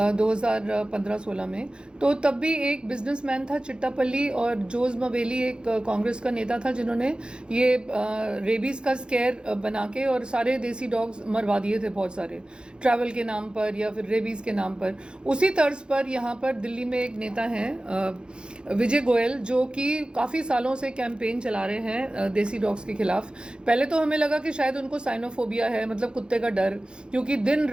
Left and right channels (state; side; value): late; left; 0.051 ms